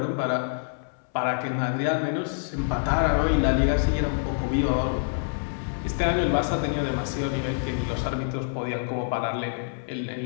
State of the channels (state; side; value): silent; right; 61 dB below the other